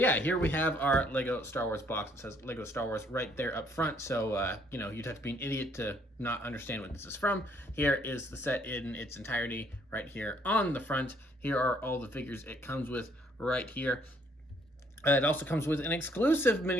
here we have our Lego Star Wars box. It says Lego Star Wars right there up front. So, you'd have to be an idiot to not understand what this is from. Here is the set in its entirety right here on the front. Here are all the figures it comes with right here. It also comes with an exclusive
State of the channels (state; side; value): normal; both; correlation 0.66